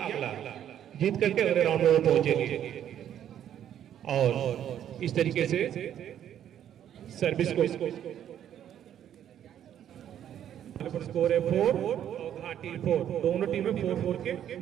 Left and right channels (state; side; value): quieter; left; 10.3 dB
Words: अगला जीत करके अगले राउंड में पहुंचेंगे। और इस तरीके से सर्विस को स्कोर है 4 और घाटी 4, दोनों टीमें 4-4 के